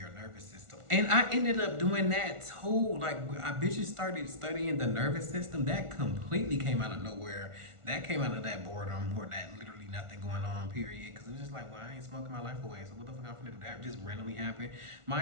nervous system. And I ended up doing that too. Like I bitches started studying the nervous system. That completely came out of nowhere. That came out of that boredom or that literally nothing going on period. Cause it was just like, well, I ain't smoking my life away. So what the fuck I'm gonna do? That just randomly happened.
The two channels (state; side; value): late; left; 1.4 ms